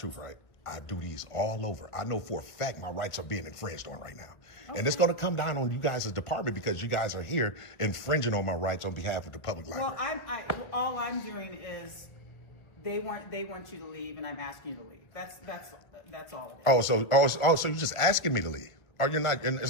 right? I do these all over. I know for a fact my rights are being infringed on right now. And it's going to come down on you guys' department because you guys are here infringing on my rights on behalf of the public library. Well, all I'm doing is they want you to leave, and I'm asking you to leave. That's all it is. So you're just asking me to leave. Or you're not,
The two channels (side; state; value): right; late; 1.1 ms